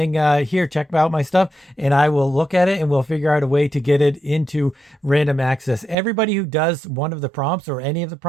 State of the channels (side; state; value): left; drops out; at 6.0 s